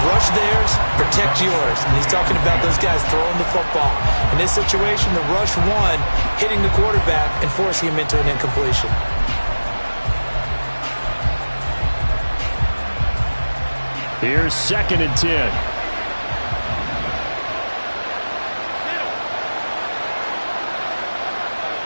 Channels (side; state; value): both; inverted; correlation -1.00